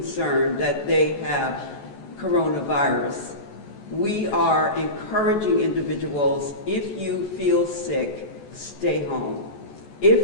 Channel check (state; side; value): late; right; 14 ms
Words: that they have coronavirus. We are encouraging individuals, if you feel sick, stay home.